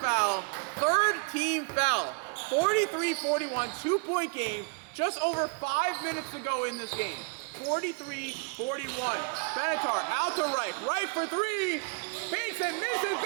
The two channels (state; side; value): quieter; left; 36.1 dB